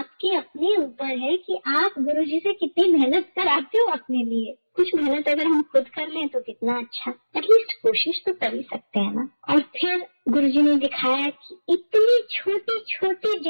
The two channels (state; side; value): inverted; both; correlation -1.00